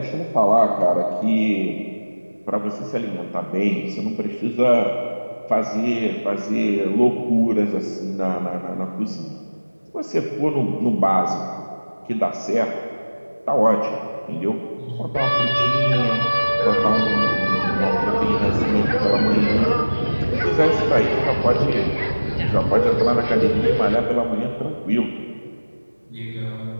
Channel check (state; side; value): inverted; both; correlation -1.00